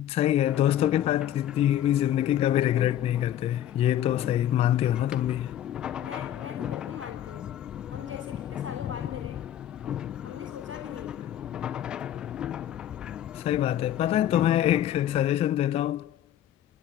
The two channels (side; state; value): right; quieter; 11.5 dB